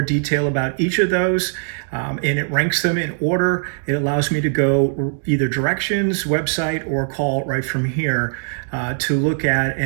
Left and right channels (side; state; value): left; silent; digital silence